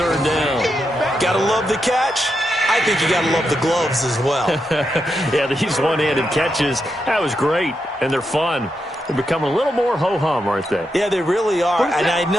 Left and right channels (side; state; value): both; normal; correlation 0.84